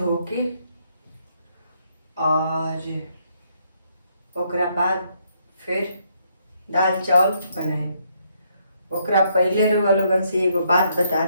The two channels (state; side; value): inverted; both; correlation -0.73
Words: के और ओकरा बाद फिर दाल चावल बनाए। ओकरा पहले रउआ लोगन से एगो बात बता